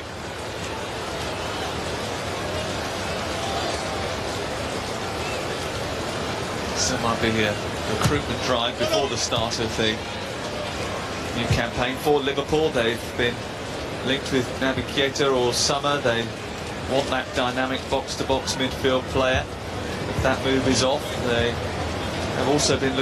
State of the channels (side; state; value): both; identical; correlation 1.00